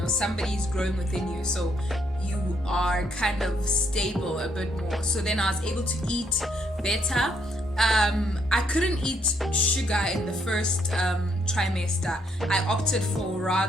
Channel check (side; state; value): both; normal; correlation 0.72